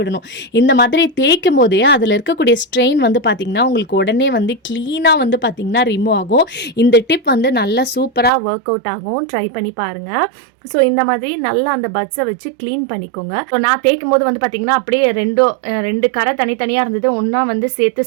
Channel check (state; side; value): drops out; left; at 8.3 s